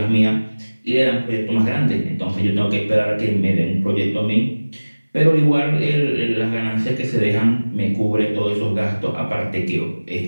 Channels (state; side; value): inverted; both; correlation -1.00